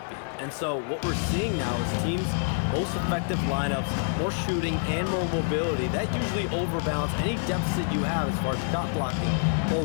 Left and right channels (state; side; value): silent; right; digital silence